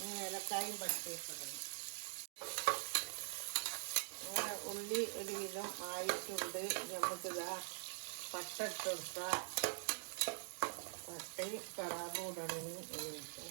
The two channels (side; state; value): left; silent; digital silence